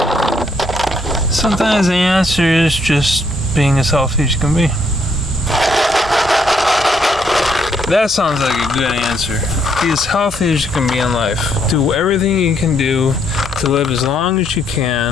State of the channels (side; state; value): both; normal; correlation 0.72